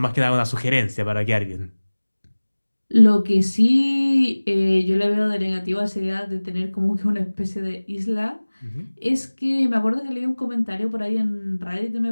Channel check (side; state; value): both; inverted; correlation -1.00